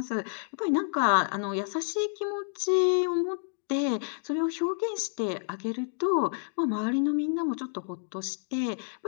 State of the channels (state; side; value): silent; right; digital silence